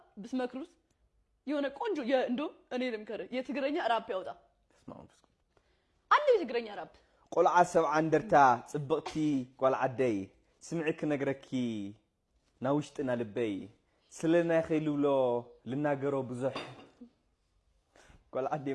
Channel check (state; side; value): identical; both; correlation 1.00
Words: ብስመክሩት የሆነ ቆንጆ እንዶ እኔ ልምከረ የትግረኛ ራፕ ያወጣ ተስማሙ አንድ የትግረኛ ራፕ ቆልዓ ሰብዓ እንደርታ ጽብቅቲ ቆልዓ ደይ ስምዕክ ነግረኪ ናውሽጥና ልበይ ስለና ኸይልብሎ ልናገሮ ብዙሕ ቆልዓ